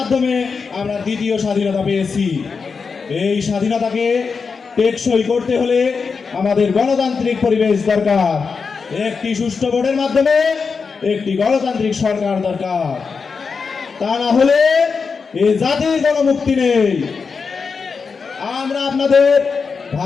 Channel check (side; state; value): right; quieter; 5.2 dB